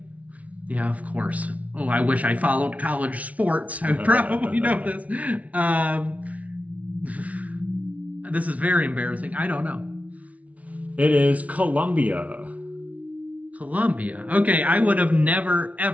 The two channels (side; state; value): left; late; 0.068 ms